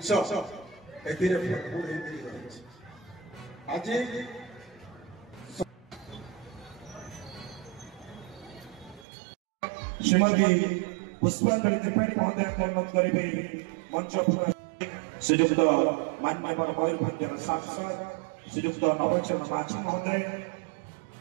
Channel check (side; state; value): left; drops out; at 9.1 s